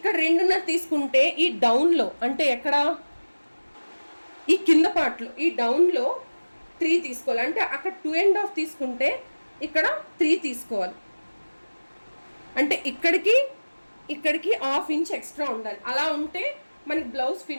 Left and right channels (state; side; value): inverted; both; correlation -1.00